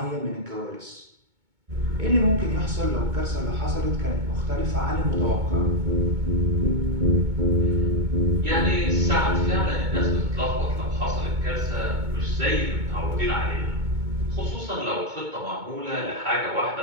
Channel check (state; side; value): late; left; 2.2 ms